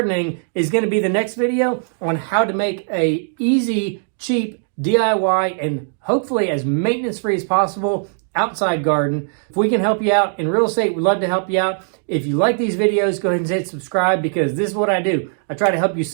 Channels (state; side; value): silent; left; digital silence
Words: is going to be the next video on how to make a easy, cheap DIY and hopefully as maintenance-free as possible outside garden. If we can help you out in real estate, we'd love to help you out. If you like these videos, go ahead and hit subscribe, because this is what I do. I try to help you